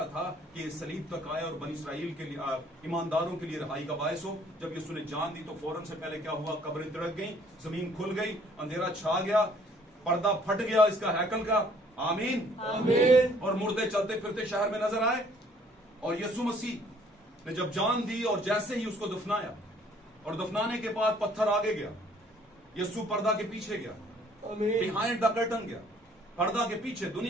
था कि ये सलीब तक आए और बनी इस्राइल के लिए, ईमानदारों के लिए रहाई का बायस हो। जब यीशु ने जान दी तो फौरन से पहले क्या हुआ? कब्रें तिड़क गई, जमीन खुल गई, अंधेरा छा गया, पर्दा फट गया इसका हैकल का। आमीन। आमीन। और मुर्दे चलते फिरते शहर में नजर आए। और यीशु मसीह ने जब जान दी और जैसे ही उसको दफनाया, और दफनाने के बाद पत्थर आगे गया, यीशु पर्दा के पीछे गया, आमीन। बिहाइंड द कर्टन गया, पर्दा के पीछे।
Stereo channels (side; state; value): both; normal; correlation 0.59